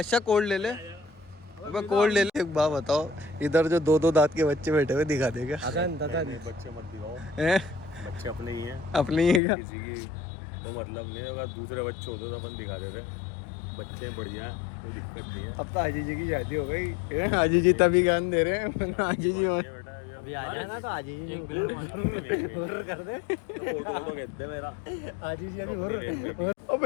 कोल्ड ले ले। अबे कोल्ड ले ले। एक बात बताओ, इधर जो 2 दांत के बच्चे बैठे हुए दिखा देगा? बच्चे मत दिखाओ, बच्चे अपने ही हैं। अपनी ही का किसी की तो मतलब नहीं है। अगर दूसरे बच्चे होते तो अपन दिखा देते। बच्चे बढ़िया, कोई दिक्कत नहीं है। अब तो आजी जी की शादी हो गई। आजी जी तभी ज्ञान दे रहे हैं, वरना आजी जी अभी आ जाए ना तो आजी जी ऑर्डर कर दे। फोटो कहते मेरा आजी जी अभी हुर्र। अब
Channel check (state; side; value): drops out; right; at 9.4 s